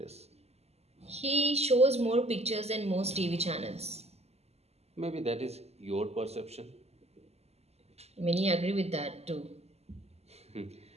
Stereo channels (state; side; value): late; left; 0.30 ms